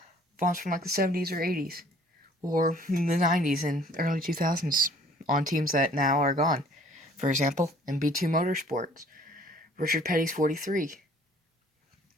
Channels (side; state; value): both; normal; correlation 0.56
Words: Fonts from the 70s or 80s. Or the 90s and early 2000s on teams that now are gone. For example, MB2 Motorsports. Richard Petty's 43.